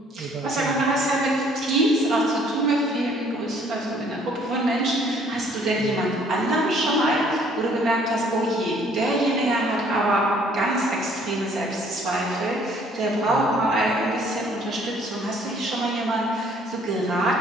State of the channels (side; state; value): both; normal; correlation 0.60